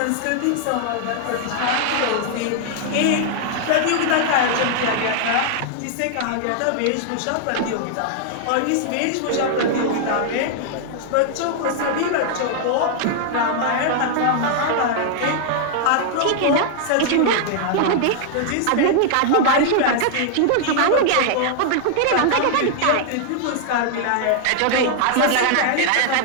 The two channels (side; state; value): both; different; correlation -0.01